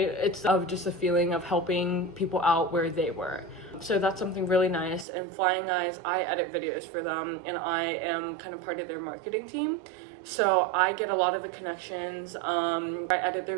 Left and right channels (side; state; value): left; drops out; at 5.1 s